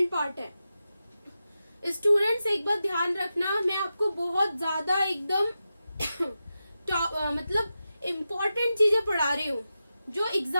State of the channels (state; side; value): inverted; both; correlation -0.91